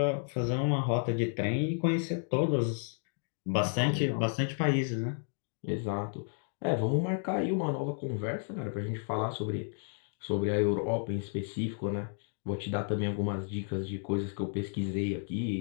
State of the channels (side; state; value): right; silent; 56 dB below the other